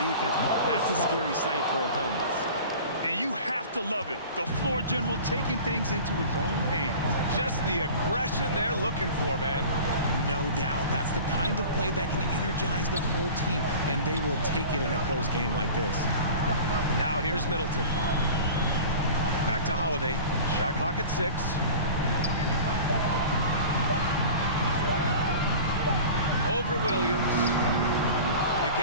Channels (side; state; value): both; inverted; correlation -0.39